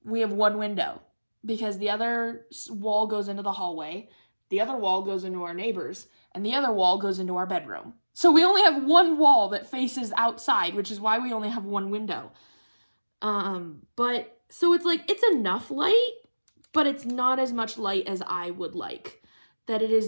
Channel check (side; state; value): both; inverted; correlation -1.00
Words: We have 1 window because the other wall goes into the hallway, the other wall goes into our neighbors, and the other wall goes into our bedroom. So we only have 1 wall that faces outside, which is why we only have 1 window. But so it's like, it's enough light, but it's not as much light as I would like. That it is